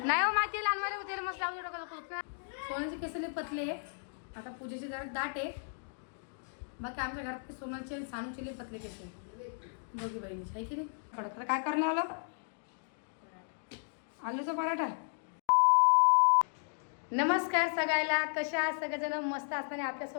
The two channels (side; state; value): right; silent; digital silence